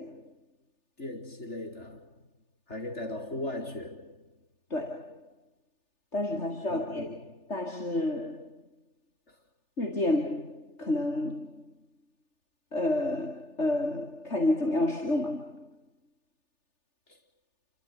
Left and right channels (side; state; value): right; late; 3.4 ms